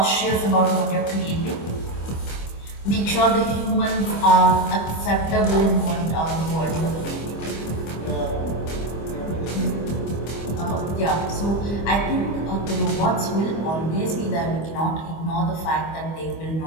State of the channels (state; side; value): late; right; 25 ms